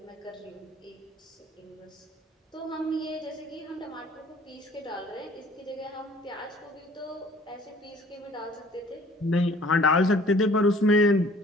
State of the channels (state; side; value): normal; both; correlation 0.53